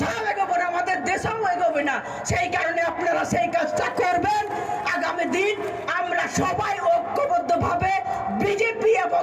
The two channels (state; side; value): identical; both; correlation 1.00